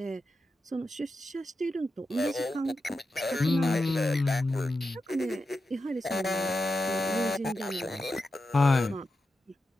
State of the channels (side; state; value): both; normal; correlation 0.89